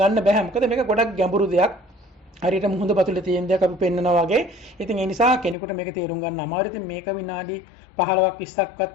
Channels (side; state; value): right; drops out; at 5.6 s